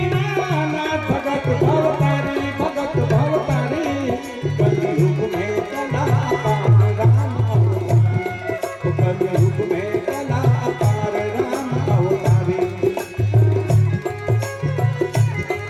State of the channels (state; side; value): identical; both; correlation 1.00